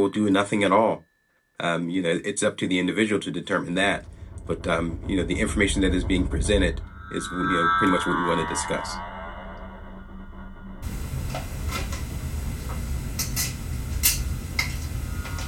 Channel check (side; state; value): both; identical; correlation 1.00